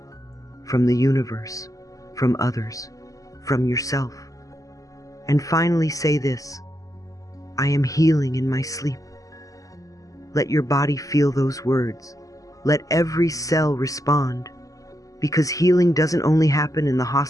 from the universe, from others, from yourself. And finally say this, I am healing in my sleep. Let your body feel those words. Let every cell respond. Because healing doesn't only happen in the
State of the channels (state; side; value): late; right; 0.17 ms